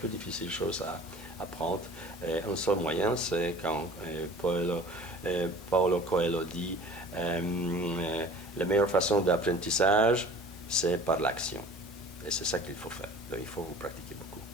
difficile chose à apprendre. Un seul moyen, c'est quand Paulo Coelho dit la meilleure façon d'apprentissage, c'est par l'action. Et c'est ça qu'il faut faire. Donc, il faut vous pratiquer beaucoup.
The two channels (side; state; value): both; normal; correlation 0.45